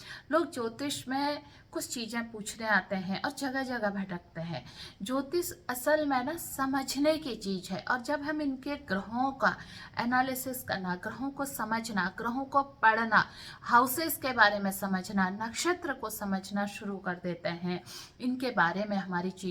लोग ज्योतिष में कुछ चीज़ें पूछने आते हैं और जगह जगह भटकते हैं। ज्योतिष असल में ना समझने की चीज़ है और जब हम इनके ग्रहों का एनालिसिस करना, ग्रहों को समझना, ग्रहों को पढ़ना, हाउसेस के बारे में समझना, नक्षत्र को समझना शुरू कर देते हैं, इनके बारे में हमारी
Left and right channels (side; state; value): both; identical; correlation 1.00